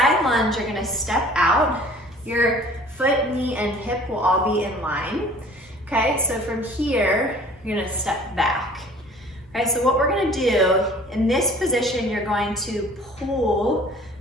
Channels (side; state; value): both; normal; correlation 0.49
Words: lunge, you're gonna step out. Your foot, knee, and hip will all be in line, okay? So from here, you're gonna step back. Okay, so what we're gonna do, in this position, you're going to pull